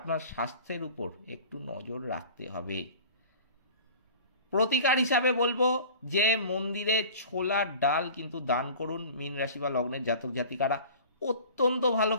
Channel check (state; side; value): inverted; both; correlation -0.41